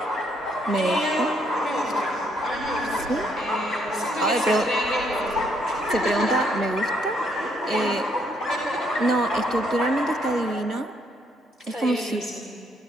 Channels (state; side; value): normal; both; correlation 0.71